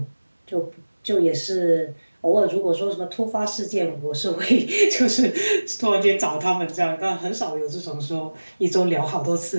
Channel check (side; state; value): both; inverted; correlation -1.00